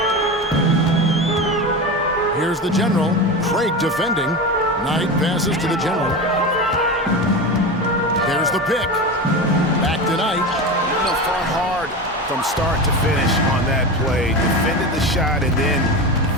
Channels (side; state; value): both; normal; correlation 0.23